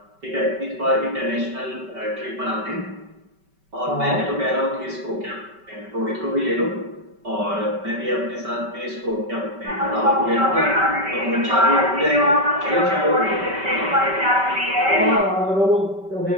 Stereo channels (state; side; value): late; left; 5.2 ms